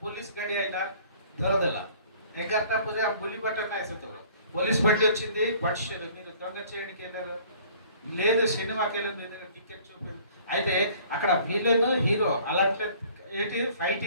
ପୋଲିସ ଗାଡି ଆଇଲା ଧରଦେଲା। 11ଟା ପରେ ఆ బులిబాట నాయ సతవ పోలీస్ బండి వచ్చింది, పట్షేరు మీరు దొంగ చేయడానికి వెళ్ళారు, లేదు సినిమాకి వెళ్ళి మీ దగ్గర టికెట్ చూపింది। అయితే అక్కడ విలన్ హీరో అలాంటి ఏంటి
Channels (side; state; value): both; inverted; correlation -0.54